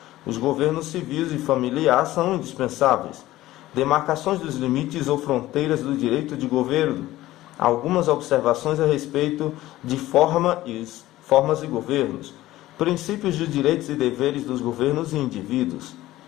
Os governos civis e familiar são indispensáveis. Demarcações dos limites ou fronteiras do direito de governo. Algumas observações a respeito de formas e governos. Princípios de direitos e deveres dos governos e indivíduos.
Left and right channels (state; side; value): quieter; right; 16.0 dB